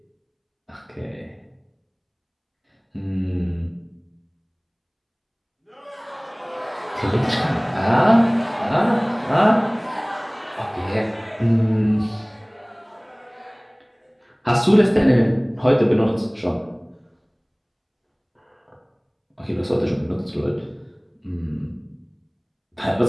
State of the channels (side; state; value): both; identical; correlation 1.00